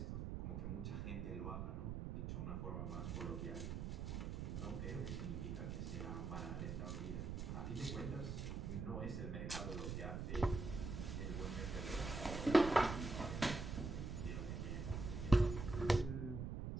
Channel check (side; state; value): right; noise; rumble, 3 dB below the sound